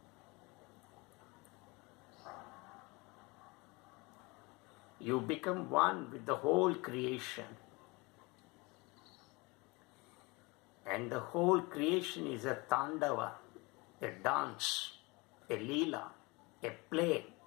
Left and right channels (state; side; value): quieter; right; 25.8 dB